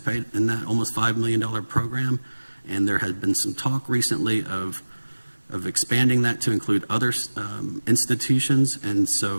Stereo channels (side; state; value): both; inverted; correlation -1.00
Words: in that almost $5 million program. And there has been some talk recently of expanding that to include other institutions, and